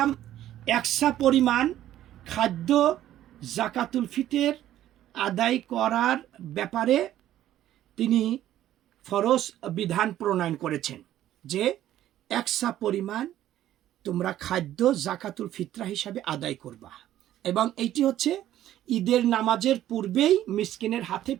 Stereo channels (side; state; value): left; quieter; 12.7 dB